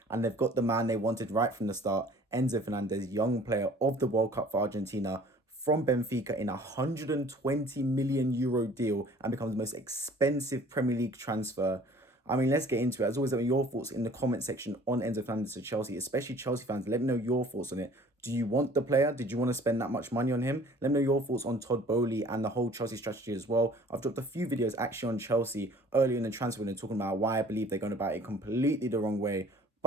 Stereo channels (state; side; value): normal; both; correlation 0.51